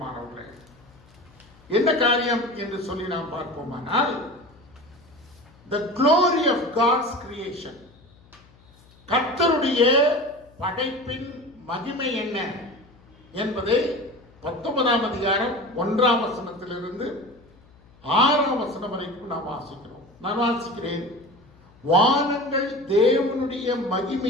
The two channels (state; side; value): noise; left; hum, 27 dB below the sound